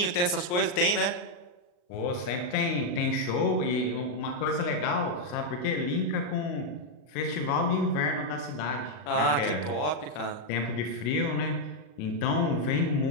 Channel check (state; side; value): late; right; 39 ms